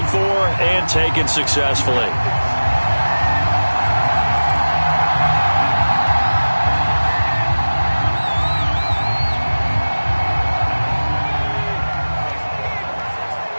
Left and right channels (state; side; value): inverted; both; correlation -1.00